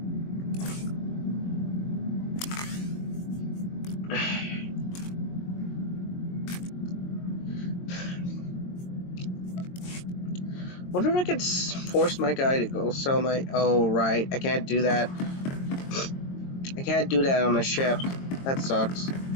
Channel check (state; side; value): late; right; 22 ms